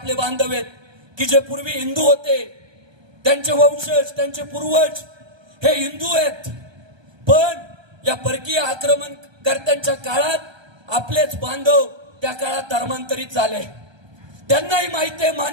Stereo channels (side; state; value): left; late; 1.3 ms